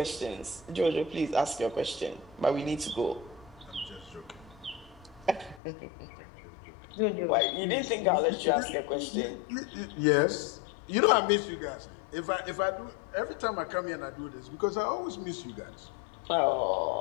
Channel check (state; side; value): drops out; right; at 5.6 s